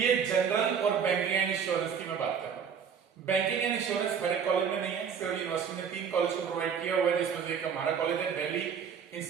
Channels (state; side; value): quieter; left; 7.0 dB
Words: जनरल और बैंकिंग एंड इंश्योरेंस की मैं बात कर रहा हूँ। बैंकिंग एंड इंश्योरेंस हर एक कॉलेज में नहीं है, सिर्फ यूनिवर्सिटी ने 3 कॉलेज को प्रोवाइड किया हुआ है, जिसमें से एक हमारा कॉलेज है Delhi